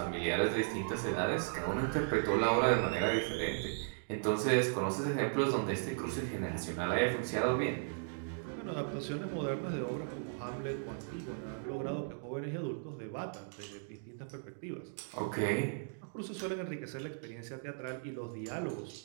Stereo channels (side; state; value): left; silent; digital silence